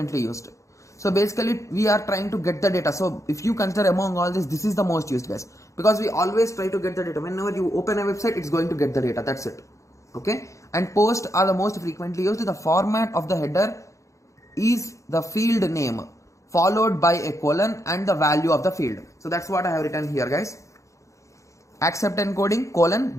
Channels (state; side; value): late; right; 0.15 ms